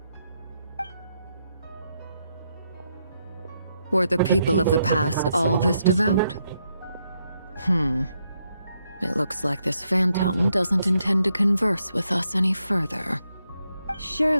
Were the people of the past all this devout? It looks like this phantom doesn't intend to converse with us any further.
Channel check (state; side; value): inverted; both; correlation -0.79